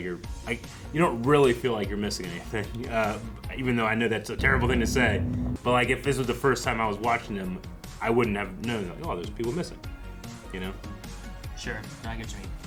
you don't really feel like you're missing anything. Even though I know that's a terrible thing to say, but like if this was the first time I was watching them, I wouldn't have known. Like, oh, there's people missing. Sure, I get what you mean.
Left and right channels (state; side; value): identical; both; correlation 1.00